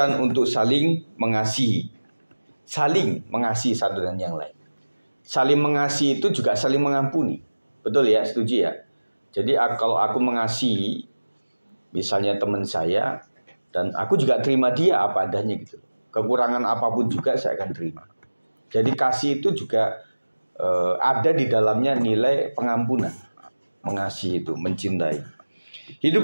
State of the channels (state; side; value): inverted; both; correlation -1.00